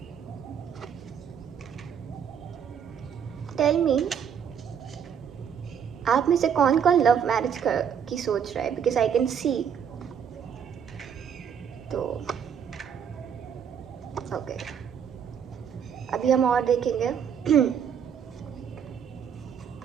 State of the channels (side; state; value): left; quieter; 7.8 dB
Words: Tell me, आप में से कौन कौन लव मैरिज की सोच रहा है, बिकॉज आई कैन सी। तो ओके, अभी हम और देखेंगे।